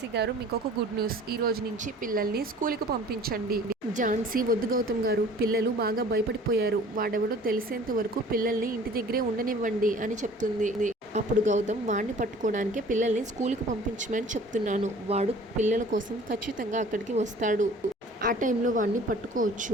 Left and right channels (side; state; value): both; normal; correlation 0.48